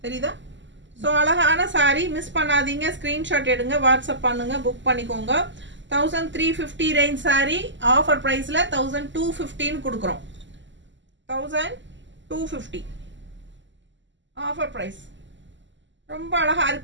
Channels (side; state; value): left; late; 0.54 ms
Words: தெரியுதா? ஸோ அழகான சாரீ, மிஸ் பண்ணாதீங்க. ஸ்க்ரீன்ஷாட் எடுங்க, வாட்ஸ்அப் பண்ணுங்கள், புக் பண்ணிக்கோங்க. 1350 ரேஞ்ச் சாரீ ஆஃபர் ப்ரைஸில் 1250 கொடுக்குறோம். 1250 ஆஃபர் ப்ரைஸ். ரொம்ப அழகாக